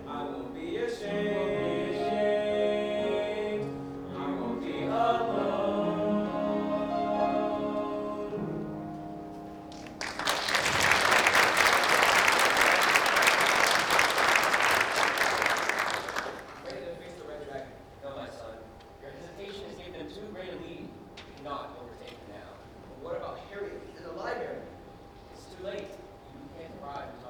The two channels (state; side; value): identical; both; correlation 1.00